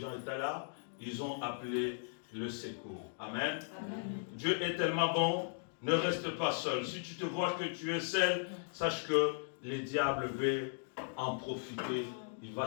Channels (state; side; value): silent; right; digital silence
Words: étaient là, ils ont appelé le secours. Amen. Amen. Dieu est tellement bon, ne reste pas seul. Si tu te vois que tu es seul, sache que les diables veulent en profiter, il